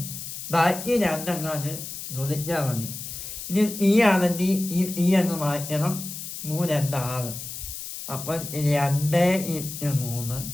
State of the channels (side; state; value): left; noise; hiss, 9 dB below the sound